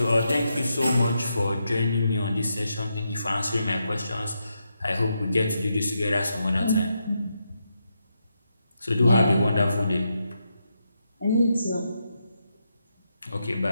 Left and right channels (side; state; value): both; inverted; correlation -0.83